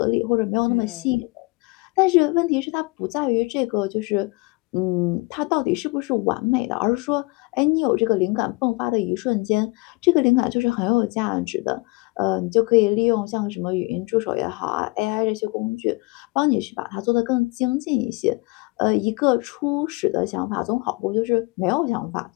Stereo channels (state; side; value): quieter; right; 26.7 dB